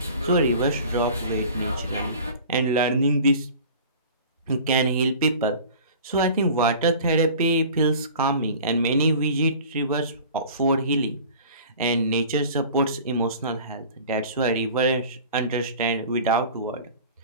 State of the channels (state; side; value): inverted; both; correlation -0.42